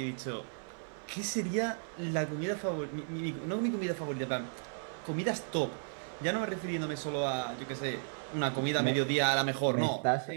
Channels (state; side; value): silent; left; 55 dB below the other